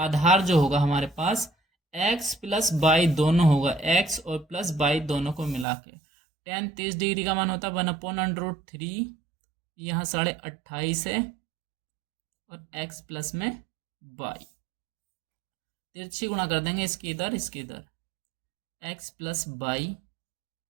जो होगा हमारे पास x प्लस बाई दोनों होगा, x और प्लस बाई दोनों को मिला के। tan 30 डिग्री का मान होता है 1/√3, यहाँ 28.5 है, और x प्लस में बाई, तिरछी गुणा कर देंगे, इसके इधर इसके इधर, x प्लस बाई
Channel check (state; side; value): drops out; left; at 5.7 s